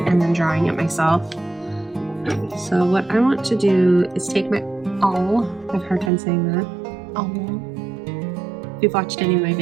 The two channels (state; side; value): drops out; left; at 6.1 s